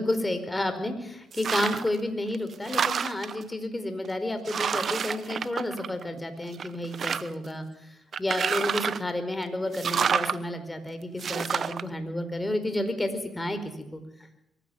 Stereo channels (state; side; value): normal; both; correlation 0.85